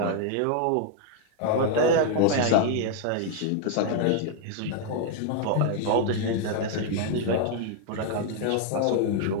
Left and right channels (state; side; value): different; both; correlation 0.00